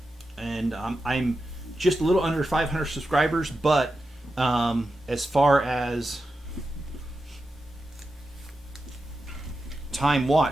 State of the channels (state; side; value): normal; both; correlation 0.90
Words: and I'm just a little under 500 subscribers, but as far as time